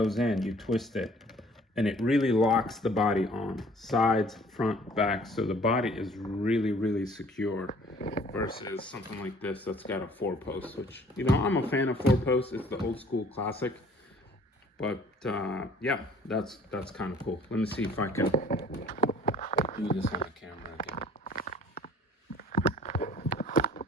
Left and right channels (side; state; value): both; normal; correlation 0.54